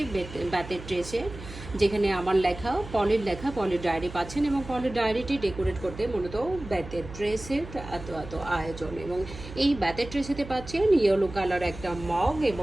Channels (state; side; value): noise; right; hum, 13 dB below the sound